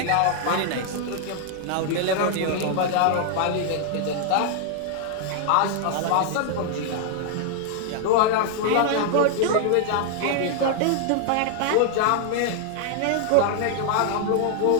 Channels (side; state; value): both; different; correlation 0.00